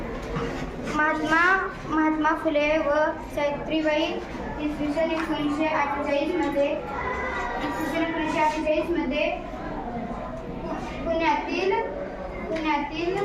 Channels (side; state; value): both; identical; correlation 1.00